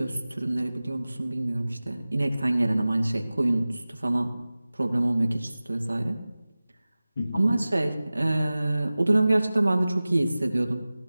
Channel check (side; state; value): both; inverted; correlation -0.97